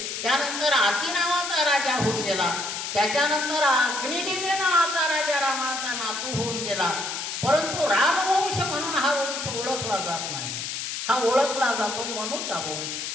त्यानंतर आती नावाचा राजा होऊन गेला. त्याच्यानंतर अग्निदेवी नावाचा राजा रामाचा नातू होऊन गेला. परंतु रामवंश म्हणून हा वंश ओळखला जात नाही. हा ओळखला जातो मनुचा वंश,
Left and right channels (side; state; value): left; noise; hiss, 5 dB below the sound